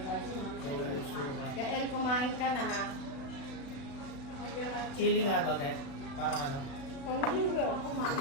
Toyo suka. Kael, kumain ka na ha. Chili nga to, te. Parang ano? Hindi ko pa kumain.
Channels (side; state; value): right; late; 36 ms